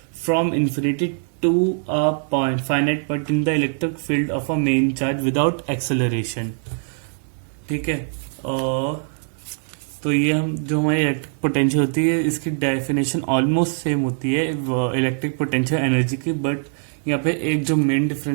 from infinity to a point finite point in the electric field of a main charge without acceleration. ठीक है, तो ये हम जो हमारी इलेक्ट्रिक पोटेंशियल होती है इसकी डेफिनेशन ऑलमोस्ट सेम होती है इलेक्ट्रिक पोटेंशियल एनर्जी की। बट यहाँ पे एक जो मेन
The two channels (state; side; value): silent; left; 64 dB below the other